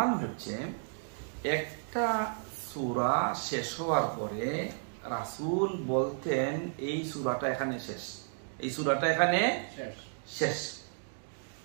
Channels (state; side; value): silent; left; digital silence